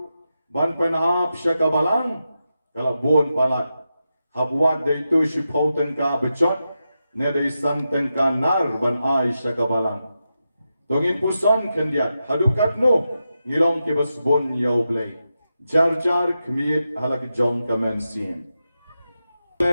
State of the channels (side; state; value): both; inverted; correlation -0.89